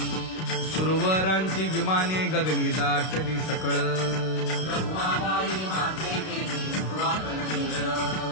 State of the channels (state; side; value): late; right; 32 ms